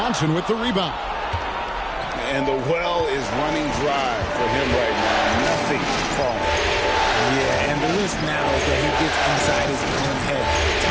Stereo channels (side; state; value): both; identical; correlation 1.00